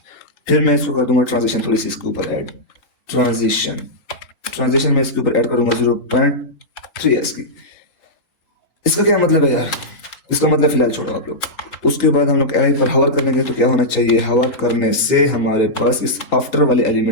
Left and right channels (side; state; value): right; late; 3.8 ms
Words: फिर मैं इसको कर दूंगा ट्रांजिशन, थोड़ी सी इसके ऊपर ऐड, ट्रांजिशन में इसके ऊपर ऐड करूंगा 0.3 की। इसका क्या मतलब है यार, इसका मतलब फिलहाल छोड़ो आप लोग। उसके बाद हम लोग एलाई पर हवर करेंगे, तो क्या होना चाहिए, हवर करने से हमारे पास इस आफ्टर वाले